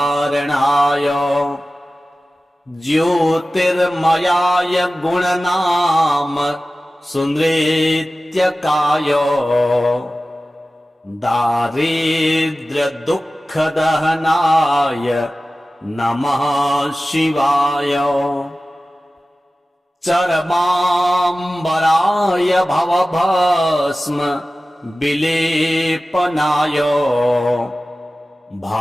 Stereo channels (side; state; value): both; normal; correlation 0.96